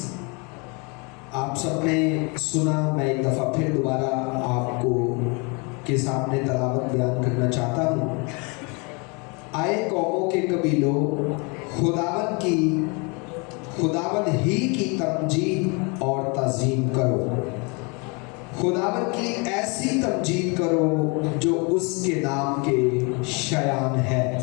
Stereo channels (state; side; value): quieter; right; 31.2 dB